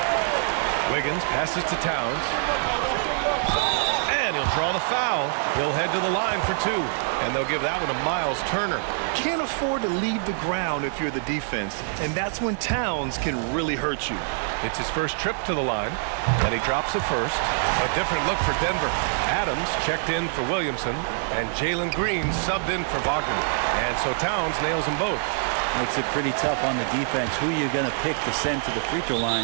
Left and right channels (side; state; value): left; silent; digital silence